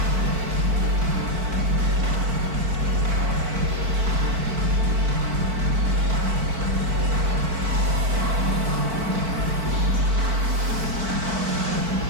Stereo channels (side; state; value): left; late; 4.5 ms